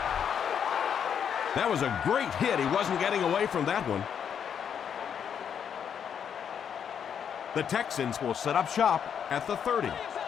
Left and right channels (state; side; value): quieter; right; 8.0 dB